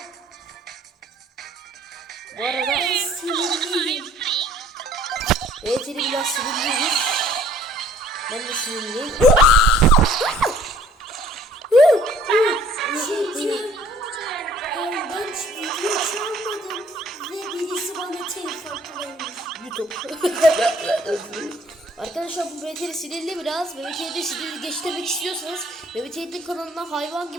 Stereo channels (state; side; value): normal; both; correlation 0.57